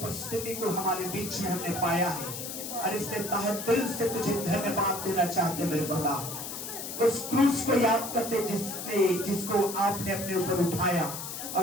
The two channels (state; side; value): noise; left; hiss, 7 dB below the sound